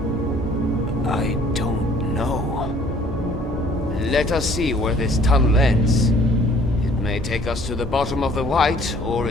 don't know. Let us see where this tunnel ends. It may take us to the bottom of the White or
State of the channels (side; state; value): both; normal; correlation 0.57